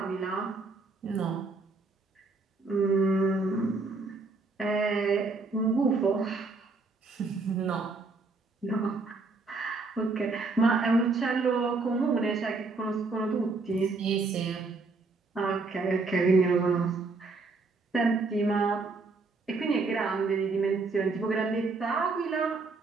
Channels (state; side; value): quieter; left; 3.8 dB